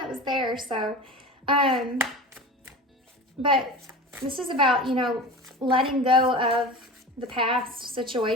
was there. So, but this is about, letting go of the past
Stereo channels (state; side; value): normal; both; correlation 0.32